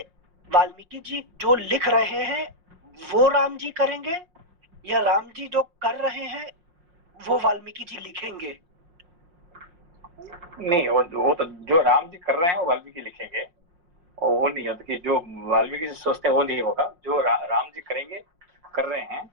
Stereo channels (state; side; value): late; left; 5.6 ms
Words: वाल्मीकि जी जो लिख रहे हैं वो राम जी करेंगे या राम जी जो कर रहे हैं वो वाल्मीकि जी लिखेंगे? नहीं, वो तो जो राम जी कर रहे हैं वो वाल्मीकि लिखेंगे, और वो नहीं होता कि जो वाल्मीकि जी सोचते हैं वो नहीं होगा। जो राम जी करेंगे, कर रहे हैं,